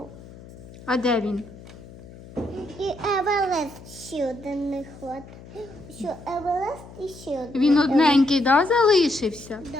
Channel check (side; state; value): left; noise; hum, 18 dB below the sound